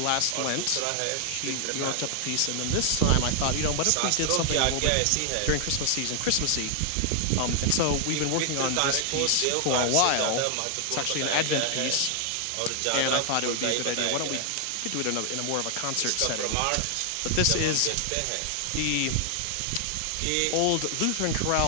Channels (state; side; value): different; both; correlation 0.00